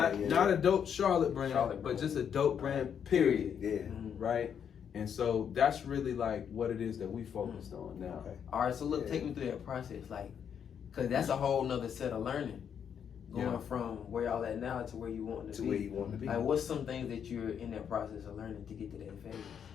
a dope Charlotte brand, but just a dope brand, period. Right? And so that's really like what it is that we focused on now. All right, so look, take me through that process, like, cause that's a whole nother set of learning, going from where y'all at now to where you want to be. Where you want to be. Like, what's some things that you're in that process of learning to get to that phase?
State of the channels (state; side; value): quieter; right; 8.0 dB